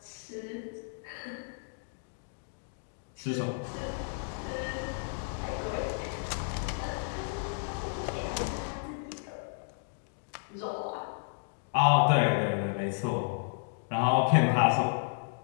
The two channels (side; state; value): right; silent; digital silence